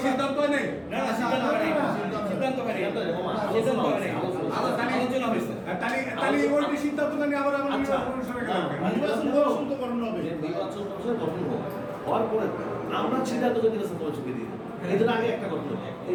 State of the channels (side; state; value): both; identical; correlation 1.00